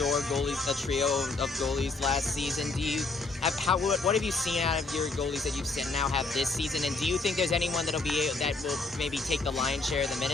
a trio of goalies last season. What have you seen out of your goalies that you've now have this season? And do you think there's anyone that will maybe take the lion's share of the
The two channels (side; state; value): right; quieter; 3.7 dB